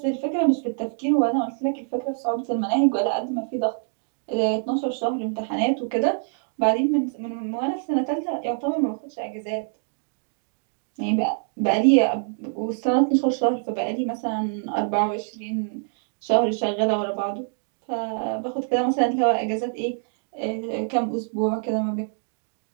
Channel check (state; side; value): silent; left; digital silence